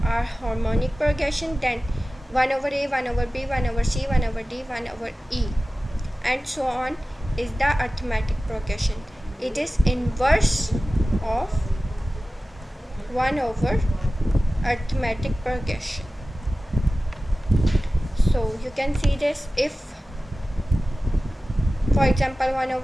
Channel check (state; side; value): normal; both; correlation 0.96